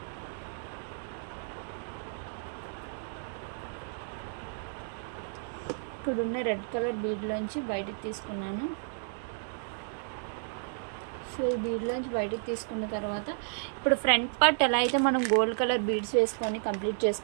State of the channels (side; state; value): left; silent; digital silence